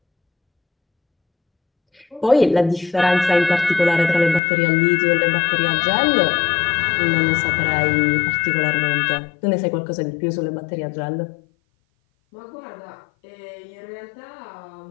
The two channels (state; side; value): drops out; right; at 4.4 s